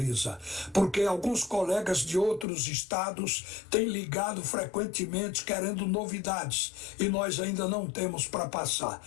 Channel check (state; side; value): drops out; right; at 2.5 s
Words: Porque alguns colegas de outros estados têm ligado frequentemente querendo novidades e nós ainda não temos para passar.